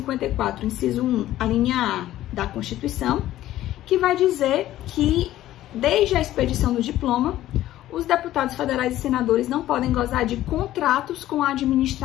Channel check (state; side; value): quieter; right; 14.0 dB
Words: inciso 1, a linha A da Constituição, que vai dizer que, desde a expedição do diploma, os deputados federais e senadores não podem gozar de contratos com a